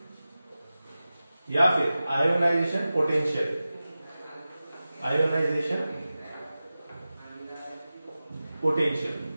या फिर आयोनाइजेशन पोटेंशियल। आयोनाइजेशन पोटेंशियल,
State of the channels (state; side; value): inverted; both; correlation -0.95